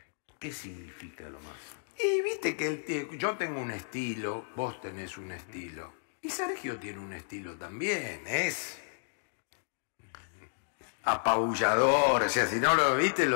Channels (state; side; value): silent; right; digital silence